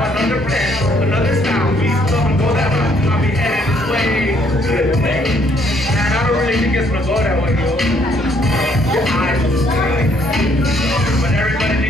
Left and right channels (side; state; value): both; normal; correlation 0.67